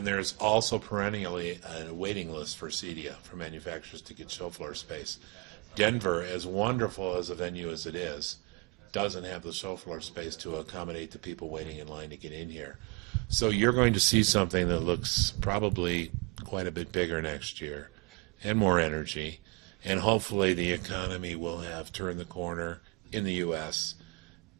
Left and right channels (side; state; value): left; quieter; 27.6 dB